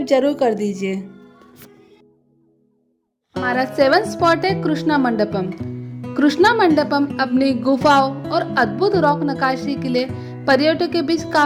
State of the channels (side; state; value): both; identical; correlation 1.00